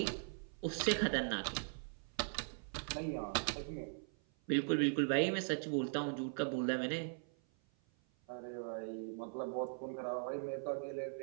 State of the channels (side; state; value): left; silent; 51 dB below the other